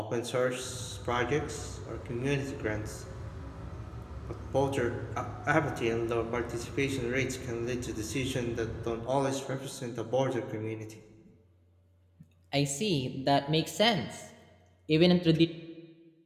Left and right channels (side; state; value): both; identical; correlation 1.00